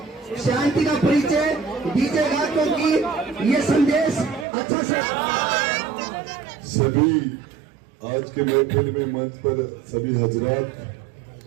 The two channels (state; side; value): drops out; left; at 4.5 s